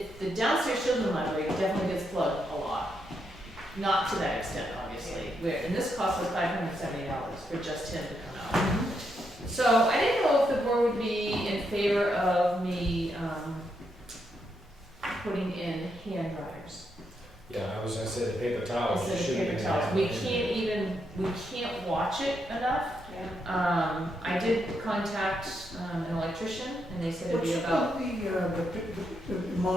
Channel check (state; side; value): normal; both; correlation 0.80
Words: downstairs children's library definitely gets plugged a lot. Not to that extent, obviously, and this cost us $570 for just him to come out. So I didn't know if the board would be in favor of me, putting in hand dryers. Yeah, I was gonna say the paper towels. Instead of should paper be towels. in We can't watch it enough. I did contact, an electrician, and they said it'd What's be about. the